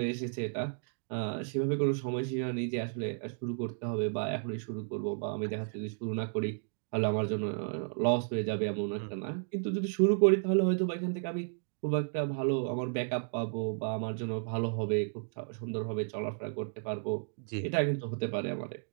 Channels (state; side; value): silent; left; digital silence